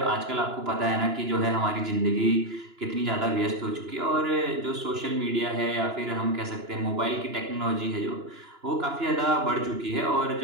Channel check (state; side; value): late; left; 2.9 ms